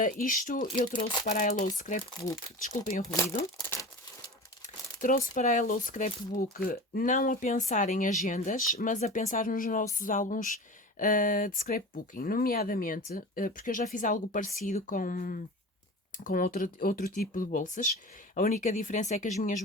isto eu trouxe para a Hello Scrapbook, desculpem o ruído, trouxe para a Hello Scrapbook não a pensar em agendas, mas a pensar nos nossos álbuns de scrapbooking, nomeadamente, porque eu já fiz algo parecido com outro tipo de bolsas. A única diferença é que as minhas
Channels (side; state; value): both; normal; correlation 0.33